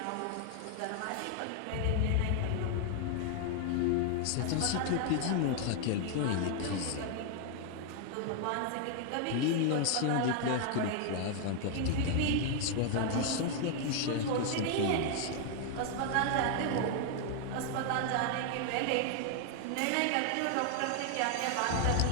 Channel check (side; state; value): both; different; correlation 0.00